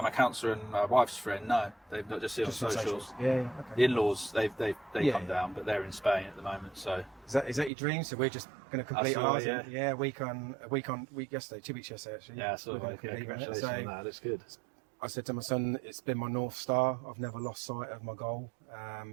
counsellor and my wife's friend, no, they've not just seen on socials. Yeah, okay. The in-laws, they come down, but they're in Spain at the moment. So is that your dream? So we're just going to complete ours. A week yesterday, 2 weeks yesterday actually. Yeah, so congratulations on that. That's good. I said to my son, it's been my North Star. I've never lost sight of my goal.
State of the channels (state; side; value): drops out; left; at 7.7 s